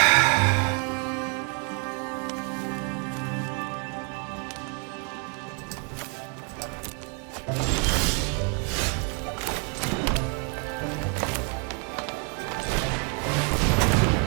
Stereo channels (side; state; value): left; quieter; 37.4 dB